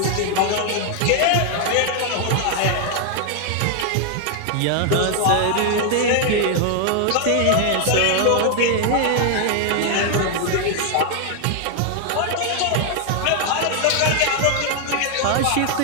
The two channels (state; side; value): different; both; correlation 0.00